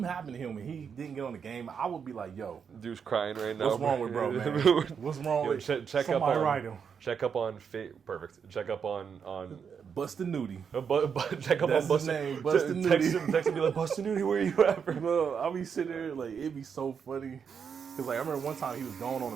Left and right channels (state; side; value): quieter; left; 6.8 dB